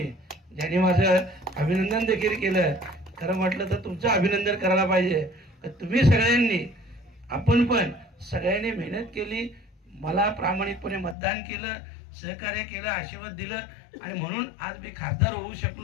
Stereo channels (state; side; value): drops out; right; at 11.2 s